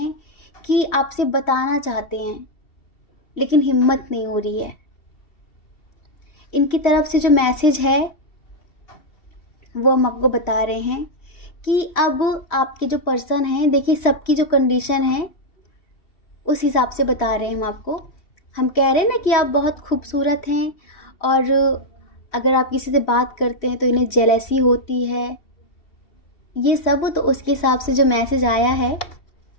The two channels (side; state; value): right; late; 2.7 ms